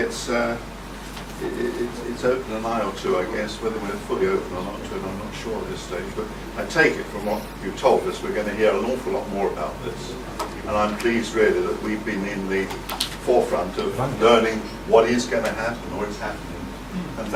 open an eye or two, I guess. Whether we're fully open or not to it, I'm not sure at this stage. But I take it from what you told us, we're going to hear an awful lot more about this. And I'm pleased, really, that we've been in the forefront of learning what is going to happen or is happening. And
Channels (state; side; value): identical; both; correlation 1.00